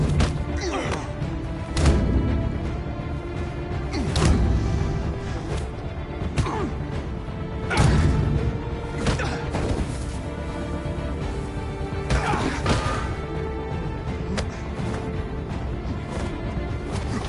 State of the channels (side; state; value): both; identical; correlation 1.00